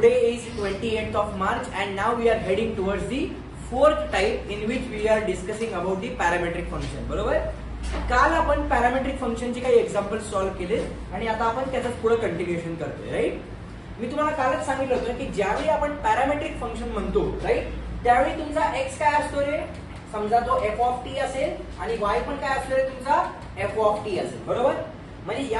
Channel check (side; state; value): both; identical; correlation 1.00